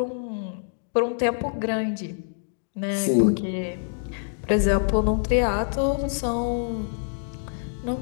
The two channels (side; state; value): right; silent; digital silence